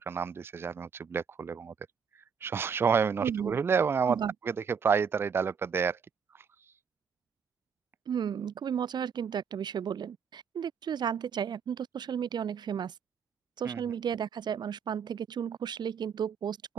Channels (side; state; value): left; quieter; 6.5 dB